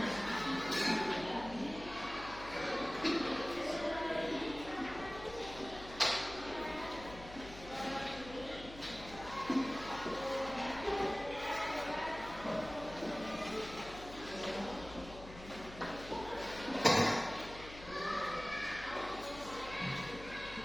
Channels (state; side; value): noise; left; hum, 15 dB below the sound